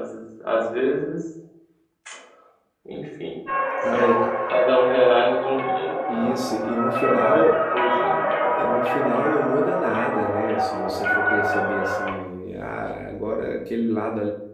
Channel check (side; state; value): both; identical; correlation 1.00